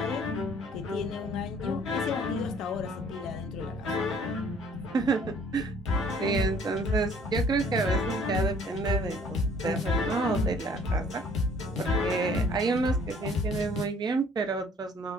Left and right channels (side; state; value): both; normal; correlation 0.57